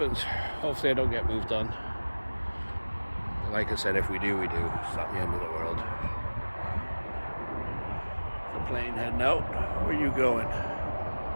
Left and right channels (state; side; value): inverted; both; correlation -1.00